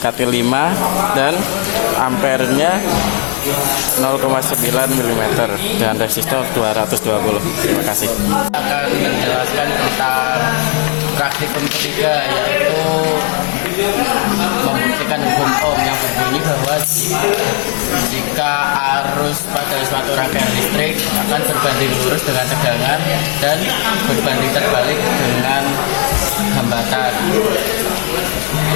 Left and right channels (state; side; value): quieter; right; 36.0 dB